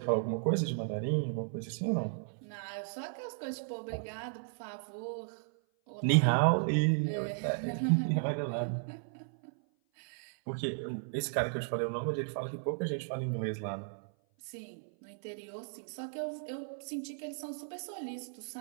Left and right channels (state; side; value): silent; left; 54 dB below the other